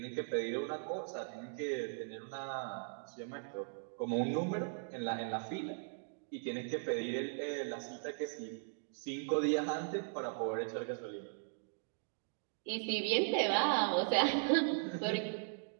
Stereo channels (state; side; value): silent; left; digital silence